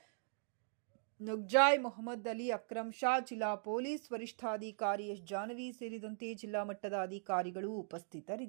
ನುಗ್ಜಾಯ್ ಮೊಹಮ್ಮದ್ ಅಲಿ, ಅಕ್ರಮ್ ಶಾ, ಜಿಲ್ಲಾ ಪೊಲೀಸ್ ವರಿಷ್ಠಾಧಿಕಾರಿ ಎಸ್ ಜಾನವಿ ಸೇರಿದಂತೆ ಜಿಲ್ಲಾ ಮಟ್ಟದ ಅಧಿಕಾರಿಗಳು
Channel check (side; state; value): left; silent; digital silence